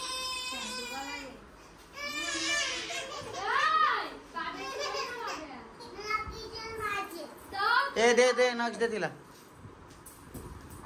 ए दे दे नक्ष दे तिला.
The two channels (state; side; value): identical; both; correlation 1.00